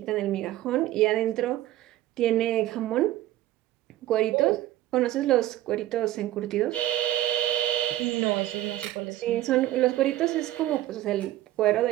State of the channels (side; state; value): left; quieter; 14.5 dB